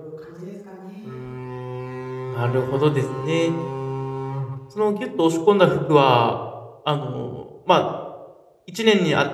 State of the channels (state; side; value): identical; both; correlation 1.00